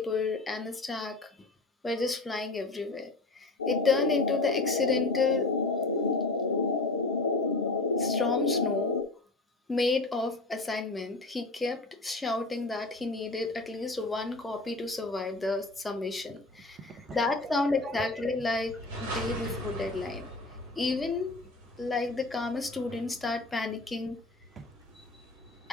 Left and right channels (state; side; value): quieter; right; 3.2 dB